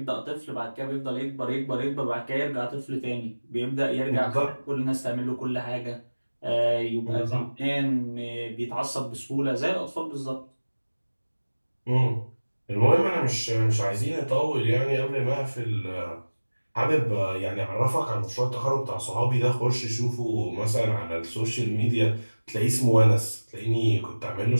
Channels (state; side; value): inverted; both; correlation -1.00